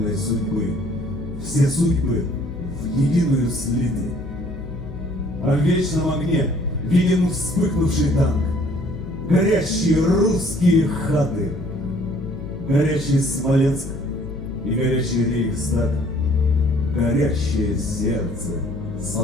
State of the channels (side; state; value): left; noise; hum, 11 dB below the sound